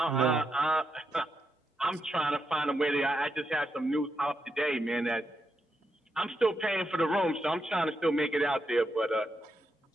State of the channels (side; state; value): both; normal; correlation 0.83